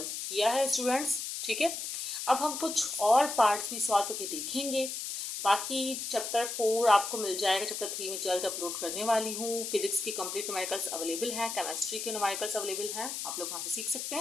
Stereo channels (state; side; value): noise; left; hiss, 5 dB below the sound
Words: किया है स्टूडेंट्स। ठीक है, अब हम कुछ और पार्ट्स भी सॉल्व करके देखेंगे। बाकी चैप्टर 4 आपको मिल जाएगा, चैप्टर 3 में जल्द अपलोड करने वाली हूँ। फिजिक्स की कंप्लीट न्यूमेरिकल्स अवेलेबल हैं, केमिस्ट्री के न्यूमेरिकल्स अवेलेबल हैं, आप लोग वहाँ से सीख सकते